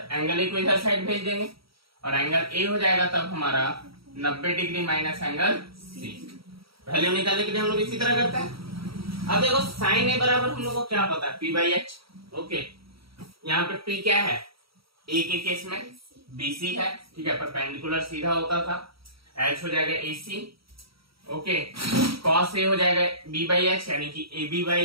एंगल ए को इधर साइड भेज देंगे और एंगल ए हो जाएगा तब हमारा 90 डिग्री माइनस एंगल सी। वैल्यू निकालने के लिए हम लोग इसी तरह करते हैं। अब देखो साइन ए बराबर हम लोग को क्या पता है, पी बाई एच। ओके, यहाँ पे पी क्या है, ए के केस में बीसी है, ठीक है, परपेंडिकुलर सीधा होता था। एच हो जाएगा एसी। ओके, कॉस ए हो जाएगा बी बाई एच यानी कि A B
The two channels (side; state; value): left; late; 0.75 ms